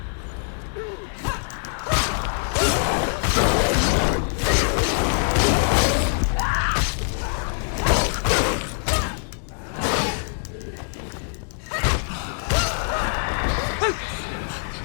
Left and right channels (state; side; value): silent; right; 63 dB below the other